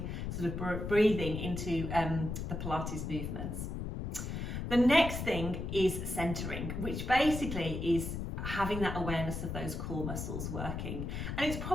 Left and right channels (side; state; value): left; noise; rumble, 4 dB below the sound